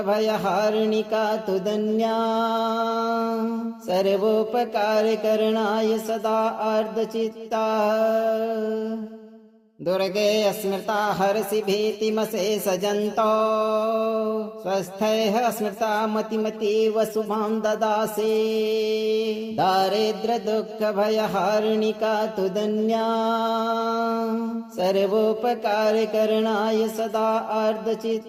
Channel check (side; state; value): both; identical; correlation 1.00